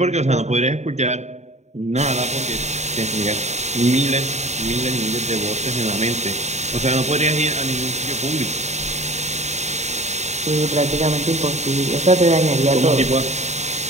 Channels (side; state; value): left; late; 0.33 ms